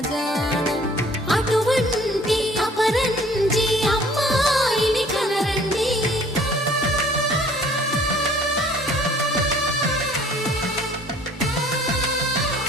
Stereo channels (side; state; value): both; normal; correlation 0.55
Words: జాన అటువంటి అపరంజి అమ్మాయిని కనరండి